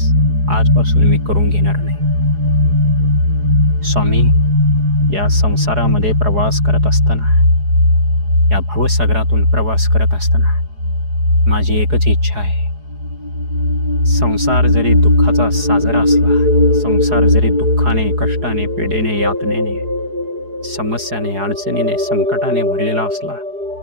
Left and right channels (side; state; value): left; late; 4.8 ms